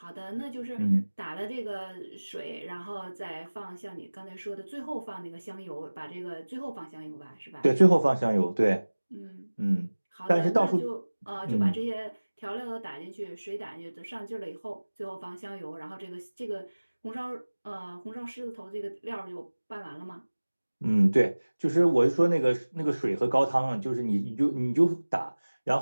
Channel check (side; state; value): both; inverted; correlation -1.00